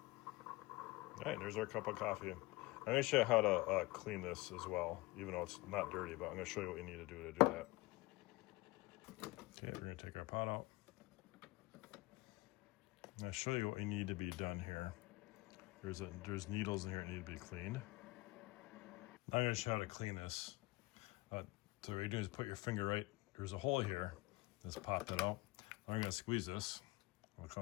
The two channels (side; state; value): right; quieter; 21.6 dB